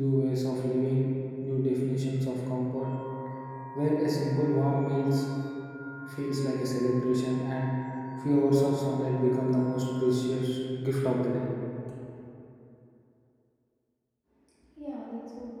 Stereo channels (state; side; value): identical; both; correlation 1.00